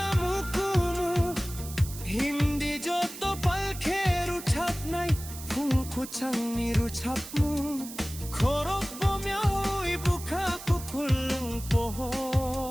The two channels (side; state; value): right; noise; hiss, 13 dB below the sound